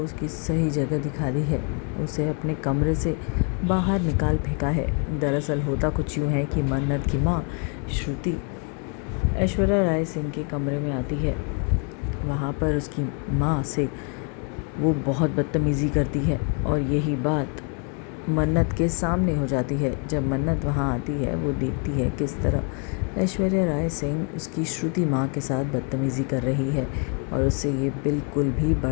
उसकी सही जगह दिखा दी है। उसे अपने कमरे से बाहर निकाल फेंका है। दरअसल होता कुछ यूँ है कि मन्नत की माँ श्रुति ऐश्वर्या राय सिंह के कमरे में आती है। वहाँ पर उसकी माँ से वो बहुत बदतमीज़ी करती है और यही बात मन्नत के सामने हो जाती है। जब मन्नत वहाँ आती है वो देखती है किस तरह ऐश्वर्या राय सिंह उसकी श्रुति माँ के साथ बदतमीज़ी कर रही है और उससे ये बिल्कुल भी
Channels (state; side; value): quieter; right; 38.8 dB